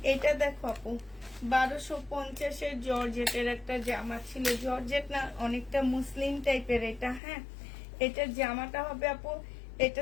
এটা দেখো আপু, 1250-এর জর্জেটের একটা জামা ছিল, জর্জেট না, অনেকটা মুসলিম টাইপের এটা, হ্যাঁ। এটা জামাটা হবে আপু,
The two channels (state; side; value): drops out; right; at 7.2 s